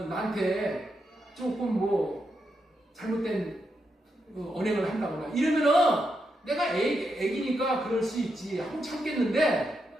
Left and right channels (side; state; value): both; normal; correlation 0.83